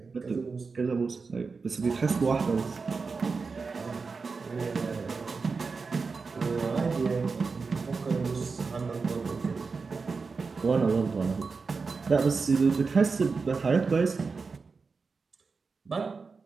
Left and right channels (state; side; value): quieter; left; 4.6 dB